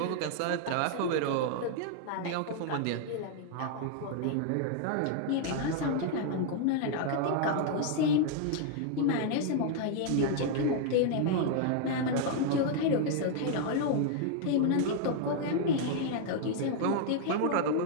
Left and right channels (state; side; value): different; both; correlation 0.00